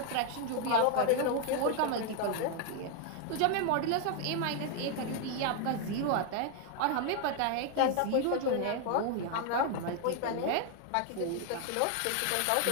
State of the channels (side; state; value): both; different; correlation 0.00